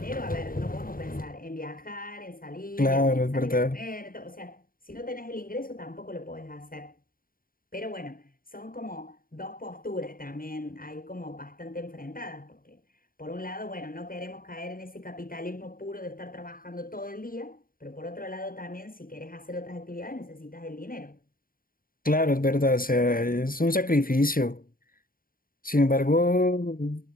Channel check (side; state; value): right; late; 0.41 ms